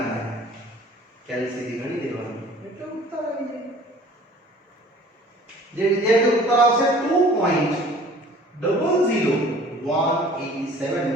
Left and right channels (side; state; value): both; normal; correlation 0.49